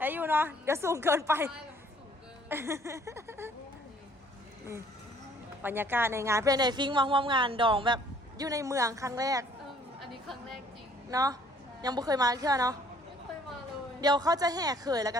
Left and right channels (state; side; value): normal; both; correlation 0.59